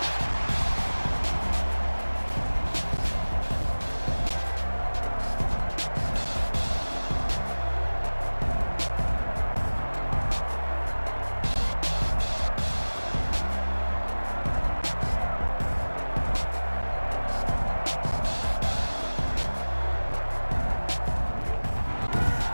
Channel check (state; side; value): inverted; both; correlation -1.00